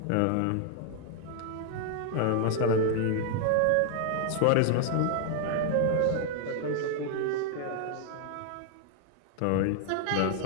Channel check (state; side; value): different; both; correlation 0.00